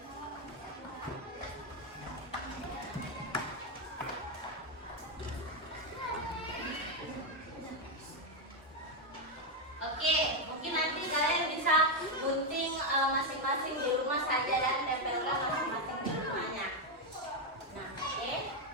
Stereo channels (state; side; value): normal; both; correlation 0.05